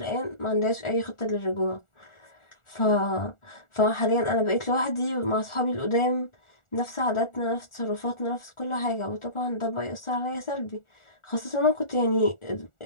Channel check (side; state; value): right; late; 1.4 ms